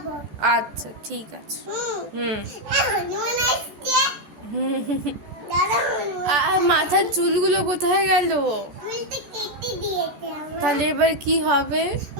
আচ্ছা ঠিক আছে। হনুমান আসছে। দাঁড়া হনুমান। আর মাথার চুলগুলো কোথায় গেল? চুলটা কেটে দিয়েছে আমার। তাহলে এবার কি হবে?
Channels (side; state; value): left; late; 14 ms